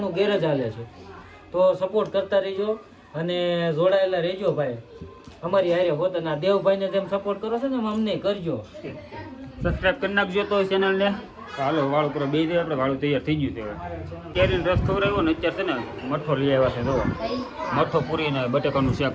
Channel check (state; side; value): identical; both; correlation 1.00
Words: ગેરેજ હાલે છે. તો સપોર્ટ કરતા રહેજો અને જોડાયેલા રહેજો ભાઈ અમારી હારે હોત. અને આ દેવભાઈને જેમ સપોર્ટ કરો છો ને એમ અમને કરજો. સબસ્ક્રાઇબ કરી નાખજો તો ચેનલને. હાલો વાળું કરો, બે દે આપણે વાળું તૈયાર થઈ ગયું છે. હવે કેરીનો રસ ખવડાવ્યો ને અત્યારે છે ને મઠો લઈ આવ્યા છે. જો મઠો પૂરીને બટેકાનું શાક